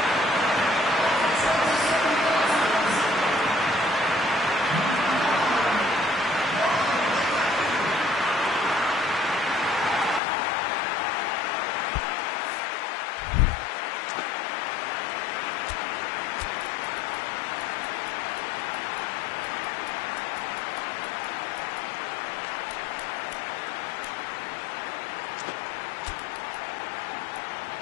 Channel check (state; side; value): drops out; right; at 10.2 s